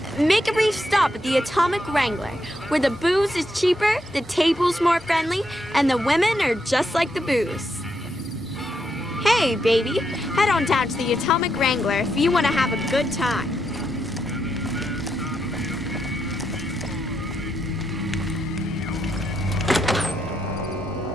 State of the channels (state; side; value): normal; both; correlation 0.80